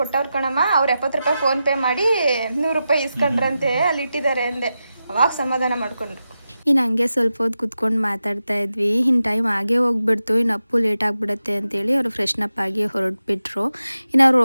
ಕೊಟ್ಟವ್ರ ಕಣಮ್ಮ. ಅವ್ರು 70 ರೂಪಾಯಿ ಫೋನ್ ಪೇ ಮಾಡಿ 100 ರೂಪಾಯಿ ಇಸ್ಕೊಂಡ್ರಂತೆ ಅಲ್ಲಿ ಇಟ್ಟಿದ್ದಾರೆ ಅಂದೆ. ಅವಾಗ ಸಮಾಧಾನ ಮಾಡ್ಕೊಂಡ್ರು. ಇನ್ನು ಹಂಗೆ ಸ್ವಲ್ಪ ಹೊತ್ತು ಕುತ್ಕೊಂಡು ಮಾತಾಡ್ತಾ ಇದ್ವಿ. ಇನ್ನು ಟೈಮ್ ಆಗೇ ಹೋಗ್ಬಿಡ್ತು, ಇನ್ನು ಅಪ್ಪು ಲೇಟ್ ಆಗಿಬಿಡುತ್ತೆ ಅಂತೇಳಿ ಅವರು ಫ್ರೆಶ್ನಪ್ ಆಗಿ ಹೊರಟ್ಬಿಟ್ರು. ಇನ್ನು ಅವ್ರು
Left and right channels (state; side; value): inverted; both; correlation -0.91